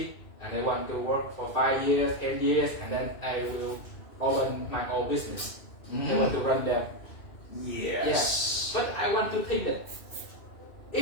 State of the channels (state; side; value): late; right; 2.6 ms